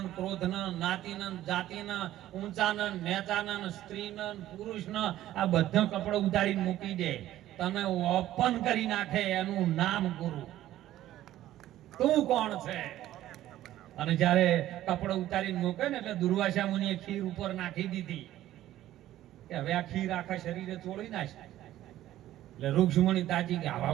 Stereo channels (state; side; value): quieter; left; 13.7 dB